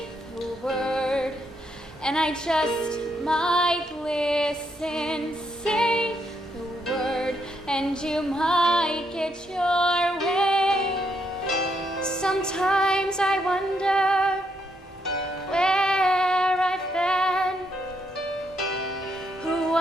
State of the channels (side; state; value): both; normal; correlation 0.77